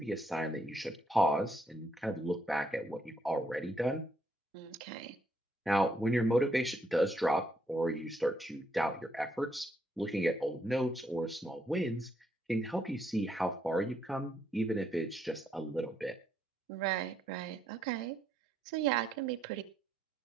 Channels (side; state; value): both; normal; correlation 0.74